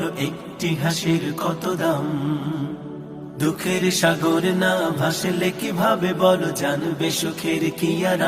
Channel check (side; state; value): both; identical; correlation 1.00